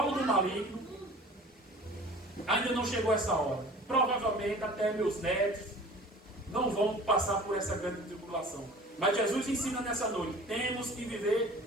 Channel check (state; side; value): normal; both; correlation 0.44